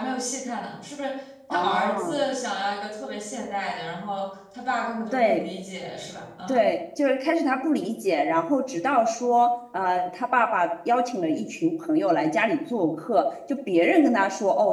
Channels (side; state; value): both; identical; correlation 1.00